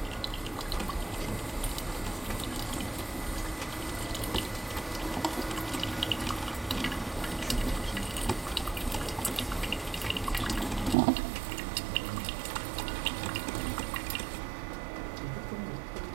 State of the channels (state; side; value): drops out; left; at 11.0 s